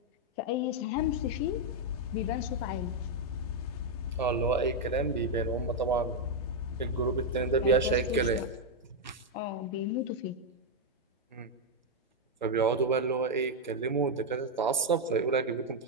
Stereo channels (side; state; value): both; normal; correlation 0.00